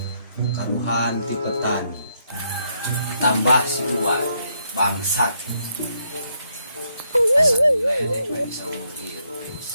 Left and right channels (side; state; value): both; inverted; correlation -0.76